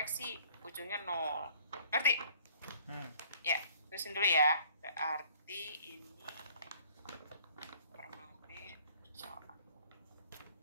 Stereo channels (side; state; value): both; inverted; correlation -0.56